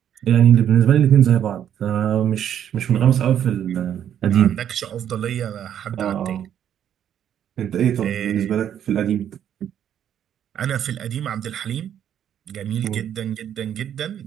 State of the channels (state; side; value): quieter; left; 9.8 dB